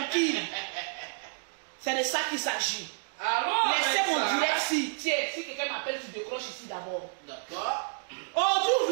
C'est de ça qu'il s'agit. Allô. Laissez mon Alexa. direct si. Tiens, si quelqu'un m'appelle, tu décroches ici d'abord. D'accord. Aujourd'hui, vous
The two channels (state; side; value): silent; left; digital silence